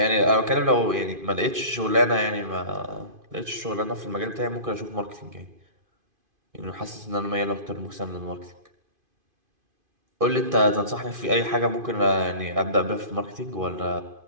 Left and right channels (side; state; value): left; late; 2.5 ms